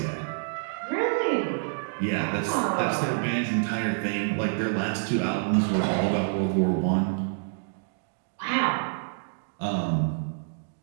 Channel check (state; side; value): silent; left; digital silence